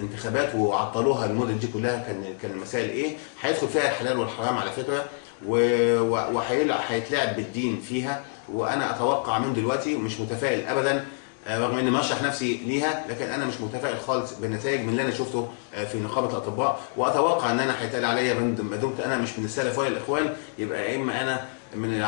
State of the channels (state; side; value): silent; right; 61 dB below the other